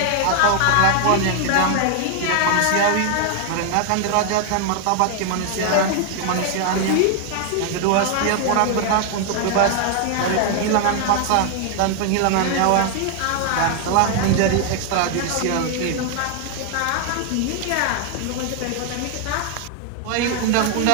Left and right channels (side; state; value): both; different; correlation 0.00